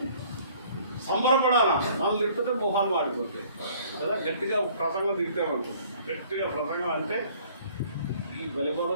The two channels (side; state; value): both; inverted; correlation -0.56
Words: సంబరపడాలా? మనం తిట్టితే మొహాలు మాడిపోతాయి కదా. గట్టిగా ప్రసంగం తిట్టామనుకో, గట్టిగా ప్రసంగం అంటే ఈ